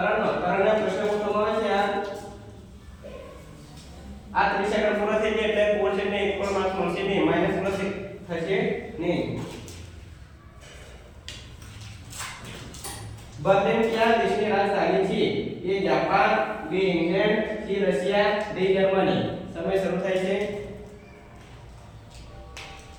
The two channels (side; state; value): both; identical; correlation 1.00